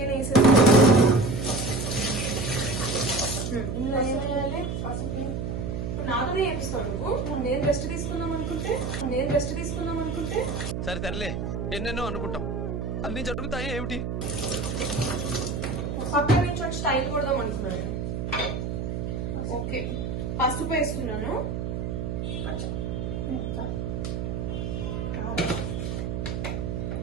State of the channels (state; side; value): noise; right; hum, 3 dB below the sound